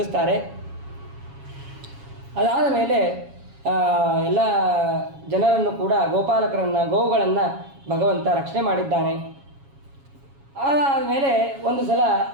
ಅದಾದ ಮೇಲೆ ಎಲ್ಲ ಜನರನ್ನು ಕೂಡ ಗೋವುಗಳನ್ನು ಭಗವಂತ ರಕ್ಷಣೆ ಮಾಡಿದ್ದಾನೆ. ಅದಾದ ಮೇಲೆ ಒಂದು ಸಲ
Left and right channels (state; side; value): late; left; 7.2 ms